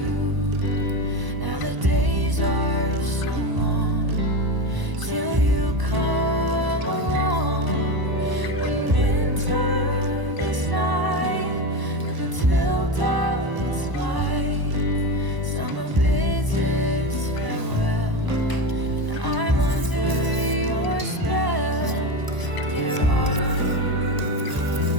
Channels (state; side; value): late; left; 1.0 ms